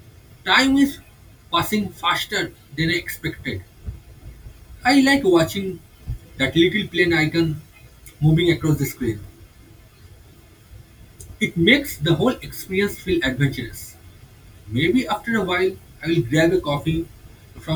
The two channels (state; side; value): identical; both; correlation 1.00